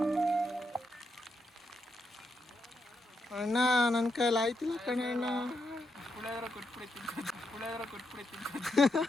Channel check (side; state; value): both; normal; correlation 0.82